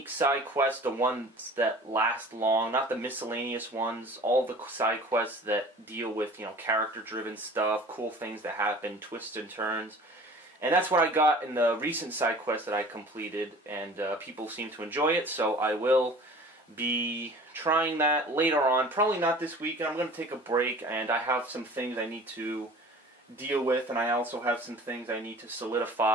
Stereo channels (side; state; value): both; normal; correlation 0.44